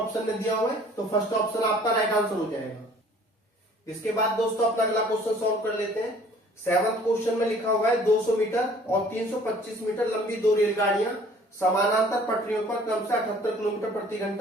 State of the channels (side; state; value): both; normal; correlation 0.54